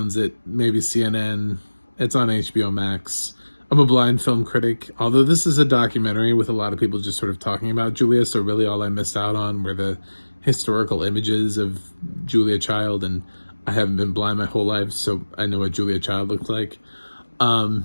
it. Maybe CNN. It's on HBO Max. I'm a blind film critic, although this is a documentary with a lot of people just sort of talking about Julia, so really all I missed out on were the historical images of Julia Child, and I haven't been blind my whole life, so I know what Julia Child looked like.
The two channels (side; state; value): both; inverted; correlation -1.00